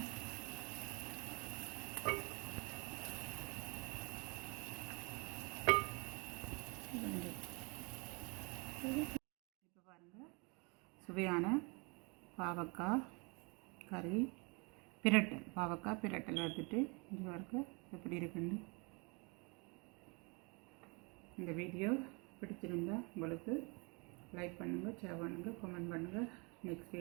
இப்போ பாருங்கள், சுவையான பாவக்காய் கறி பிரட்டல், பாவக்காய் பிரட்டல் எடுத்துட்டு இங்கே பாருங்க எப்படி இருக்குன்னு. இந்த வீடியோ பிடிச்சிருந்தா உங்களுக்கு லைக் பண்ணுங்கள், ஷேர் பண்ணுங்கள், கமெண்ட் பண்ணுங்கள். நெக்ஸ்ட்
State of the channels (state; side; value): quieter; left; 31.0 dB